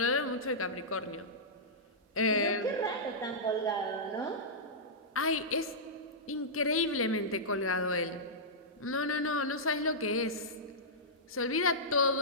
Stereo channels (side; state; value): both; normal; correlation -0.13